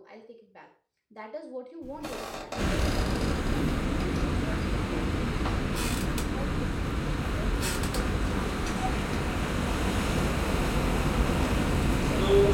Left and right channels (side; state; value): both; identical; correlation 1.00